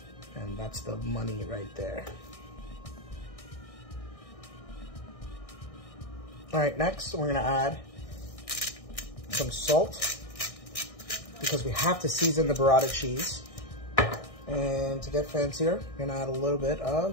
And that's the money right there. All right, next we're gonna add some salt because we have to season the burrata cheese. And to get fancier, I'm gonna add a little bit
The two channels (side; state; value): right; late; 1.6 ms